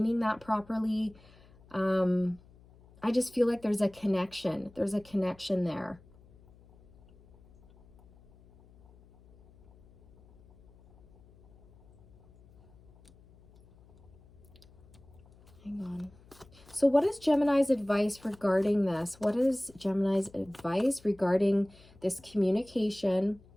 that properly. I just feel like there's a connection. There's a connection there. So what is Gemini's advice regarding this? What is Gemini's advice regarding this communication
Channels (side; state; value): left; noise; hum, 26 dB below the sound